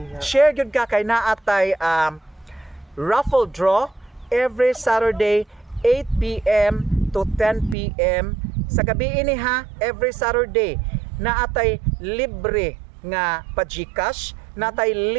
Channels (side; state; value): left; drops out; at 7.8 s